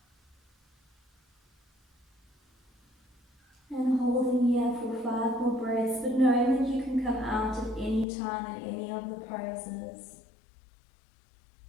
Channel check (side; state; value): right; drops out; at 8.1 s